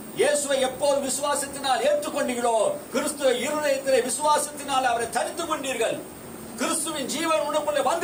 இயேசுவை எப்போது விசுவாசத்தினால் ஏற்றுக்கொண்டீர்களோ, கிறிஸ்துவ இருதயத்திலே விசுவாசத்தினால் அவரை தரித்துக் கொண்டீர்கள். கிறிஸ்துவின் ஜீவன் உனக்குள்ளே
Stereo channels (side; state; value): both; identical; correlation 1.00